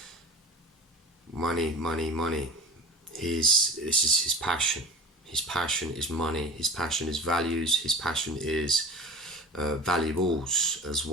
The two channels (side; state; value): both; normal; correlation 0.34